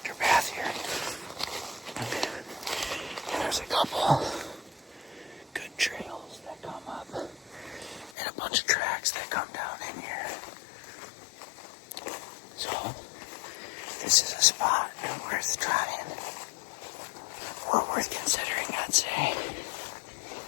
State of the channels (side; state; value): right; drops out; at 8.2 s